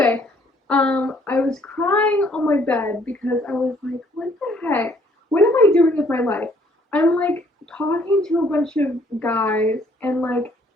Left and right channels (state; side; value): normal; both; correlation 0.63